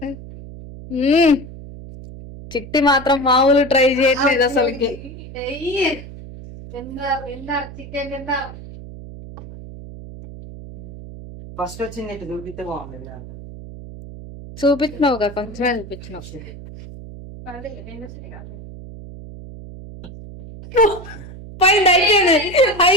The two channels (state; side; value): noise; right; hum, 14 dB below the sound